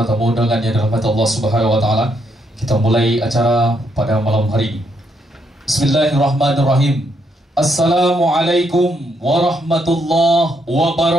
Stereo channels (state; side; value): normal; both; correlation 0.76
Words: tamu undangan yang dirahmati Allah Subhanahu wa taala, kita mulai acara pada malam hari ini. Bismillahirrahmanirrahim. Assalamualaikum warahmatullahi